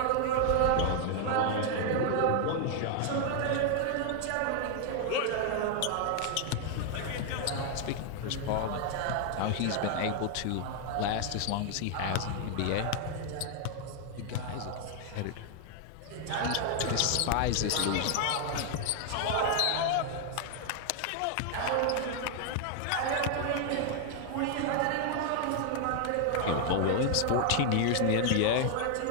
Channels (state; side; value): different; both; correlation 0.00